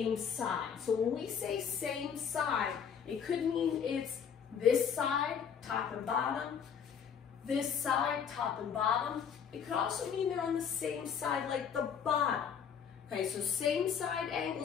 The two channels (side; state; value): right; quieter; 7.4 dB